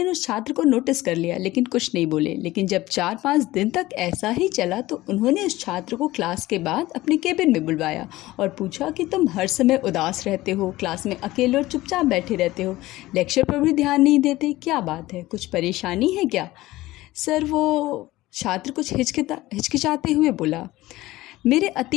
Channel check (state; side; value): quieter; right; 17.6 dB